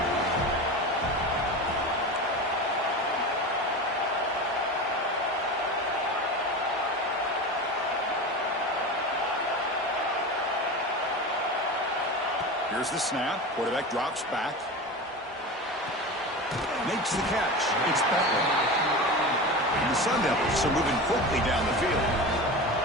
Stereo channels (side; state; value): both; normal; correlation 0.28